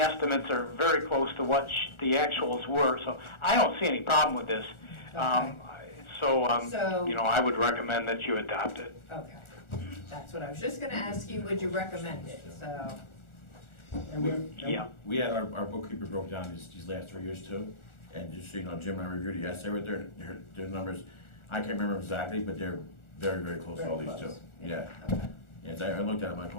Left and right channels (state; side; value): late; right; 1.4 ms